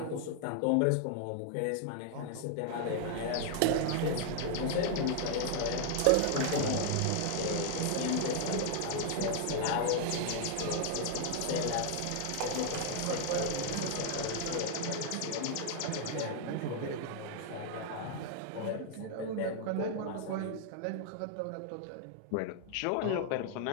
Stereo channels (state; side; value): different; both; correlation 0.00